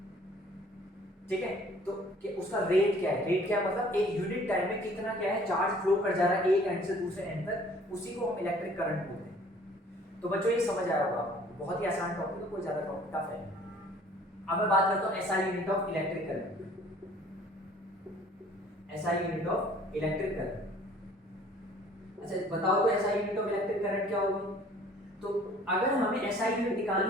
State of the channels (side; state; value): both; normal; correlation 0.54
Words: ठीक है, तो उसका रेट क्या है, रेट क्या है मतलब एक यूनिट टाइम में कितना क्या है चार्ज फ्लो कर जा रहा है एक एंड से दूसरे एंड तक, उसी को हम इलेक्ट्रिक करंट बोलते हैं। तो बच्चों ये समझ आया होगा आपको, बहुत ही आसान टॉपिक है, कोई ज्यादा टॉपिक टफ है। अब मैं बात करता हूं SI unit of electric current. SI unit of electric current, अच्छा बताओ तो SI unit of electric current क्या होगी। तो अगर हमें एसआई यूनिट